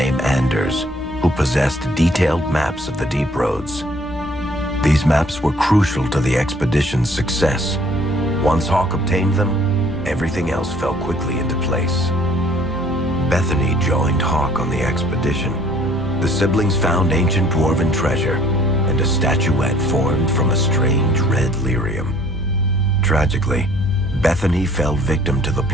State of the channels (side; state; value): both; normal; correlation 0.57